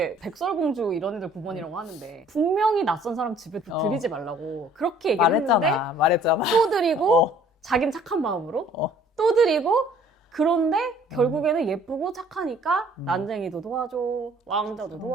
백설공주 이런 애들 9번이라고 하는데 분명히 낯선 사람 집에 들이지 말라고 그렇게 얘기를 했는데 말했잖아. 또 드리고 자긴 착한 마음으로 또 드리고 그런데 결국에는 예쁘고 착하니까 난쟁이도 도와줘, 왕자도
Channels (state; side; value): normal; both; correlation 0.56